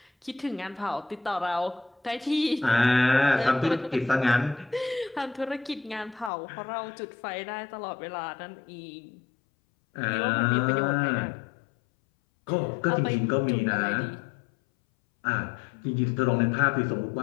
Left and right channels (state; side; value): drops out; right; at 6.3 s